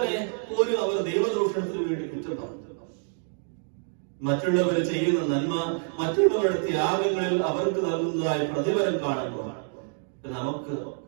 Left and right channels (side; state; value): left; silent; 60 dB below the other